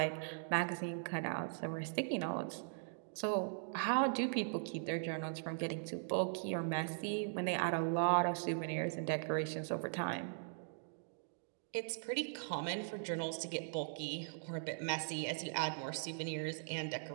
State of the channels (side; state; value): left; silent; digital silence